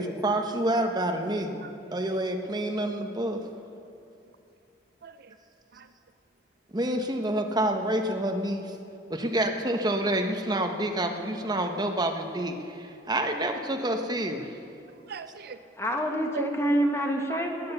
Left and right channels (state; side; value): normal; both; correlation 0.50